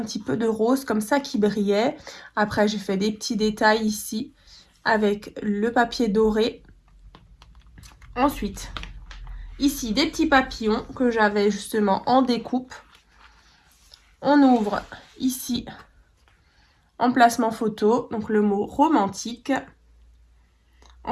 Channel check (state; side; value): identical; both; correlation 1.00